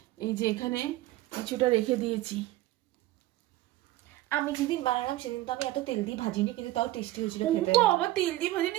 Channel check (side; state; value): left; quieter; 16.7 dB